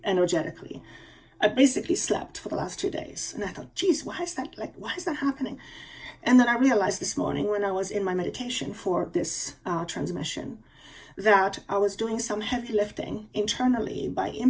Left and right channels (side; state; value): both; identical; correlation 1.00